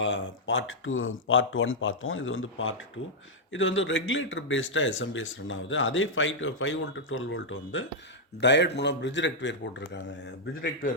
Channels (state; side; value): normal; both; correlation -0.05